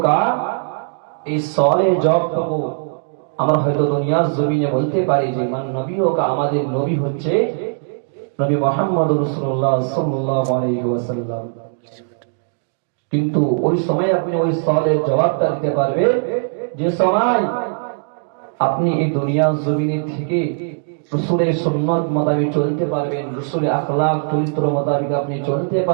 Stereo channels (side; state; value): left; silent; digital silence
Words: এই সওয়ালের জবাবটুকু আমরা হয়তো দুনিয়ার জমিনে বলতে পারি যে মান নবিয়ুকা, আমাদের নবী হচ্ছে নবী মুহাম্মদ রাসূলুল্লাহ সাল্লাল্লাহু আলাইহি ওয়াসাল্লাম। কিন্তু ওই সময় আপনি ওই সওয়ালের জবাবটা দিতে পারবে যে সময় আপনি এই দুনিয়ার জমিনে থেকে রসুলের সুন্নত মোতাবেক চলতে পারবেন, রসুলের আখলাক চরিত্র মোতাবেক আপনি চলতে